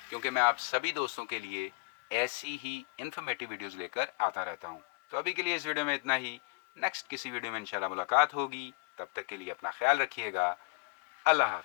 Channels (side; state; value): right; quieter; 35.9 dB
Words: क्योंकि मैं आप सभी दोस्तों के लिए ऐसी ही इन्फॉर्मेटिव वीडियोज़ लेकर आता रहता हूँ। तो अभी के लिए इस वीडियो में इतना ही। नेक्स्ट किसी वीडियो में इंशाल्लाह मुलाकात होगी। तब तक के लिए अपना ख्याल रखिएगा। अल्लाह